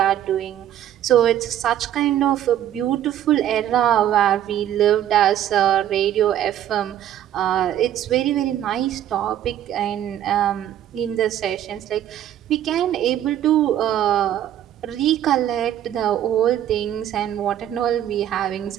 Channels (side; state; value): left; quieter; 11.3 dB